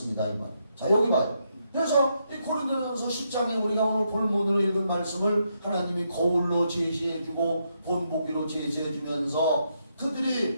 이 말. 자 여기 봐요. 그래서 이 고린도전서 10장에 우리가 오늘 본문으로 읽은 말씀을 하나님이 거울로 제시해주고 본보기로 제시해주면서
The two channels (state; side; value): inverted; both; correlation -0.79